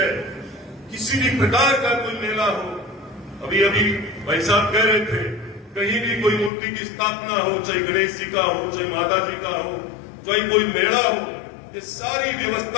किसी भी प्रकार का कोई मेला हो, अभी अभी भाई साहब कह रहे थे, कहीं भी कोई मूर्ति की स्थापना हो, चाहे गणेश जी का हो, चाहे माता जी का हो, चाहे कोई मेला हो, ये सारी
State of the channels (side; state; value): right; drops out; at 6.5 s